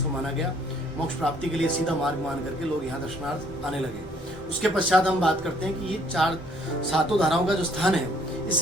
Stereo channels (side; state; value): both; normal; correlation 0.63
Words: माना गया। मोक्ष प्राप्ति के लिए सीधा मार्ग मान करके लोग यहाँ दर्शनार्थ आने लगे। उसके पश्चात हम बात करते हैं कि ये सातों धाराओं का जो स्थान है,